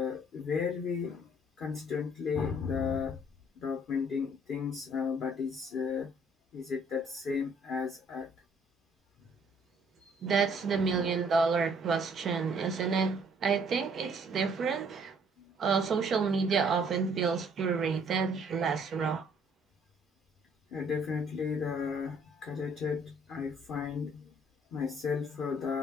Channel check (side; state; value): both; normal; correlation 0.61